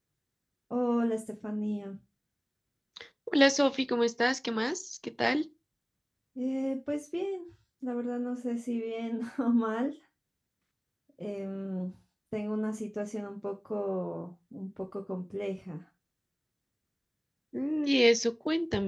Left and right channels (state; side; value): identical; both; correlation 1.00